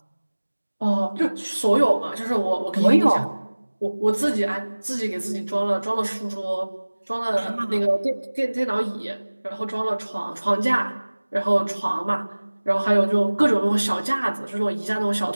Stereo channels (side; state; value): both; inverted; correlation -1.00